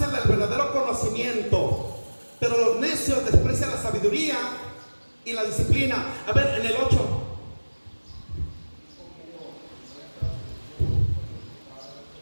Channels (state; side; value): inverted; both; correlation -1.00